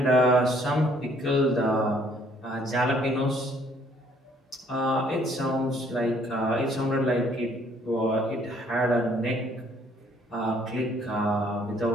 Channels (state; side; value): normal; both; correlation 0.63